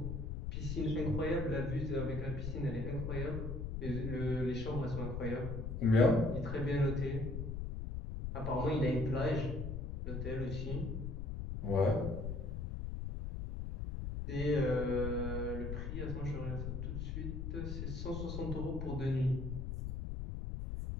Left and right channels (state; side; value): noise; left; rumble, 4 dB below the sound